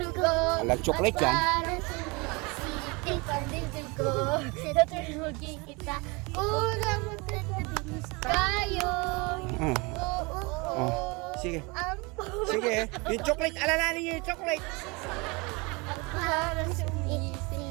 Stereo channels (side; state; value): left; quieter; 27.5 dB